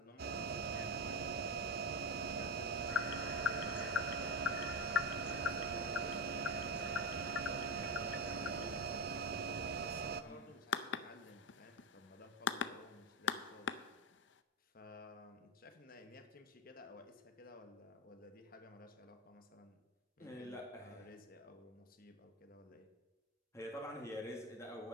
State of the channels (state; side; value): normal; both; correlation 0.14